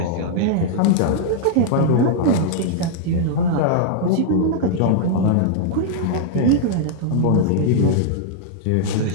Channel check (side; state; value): both; different; correlation -0.01